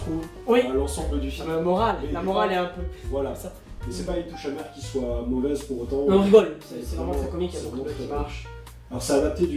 à l'ensemble du film. La morale est un peu... Voilà. Ça. Mais c'est pas une touche amère qui soit mauvaise pour autant. On rigole, c'est vraiment très comique, il y a beaucoup qui marche. Alors c'est adapté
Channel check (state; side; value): identical; both; correlation 1.00